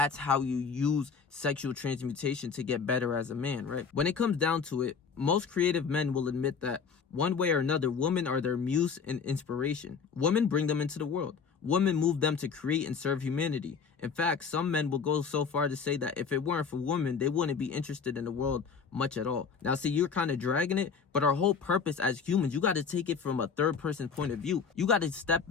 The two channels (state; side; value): quieter; right; 5.9 dB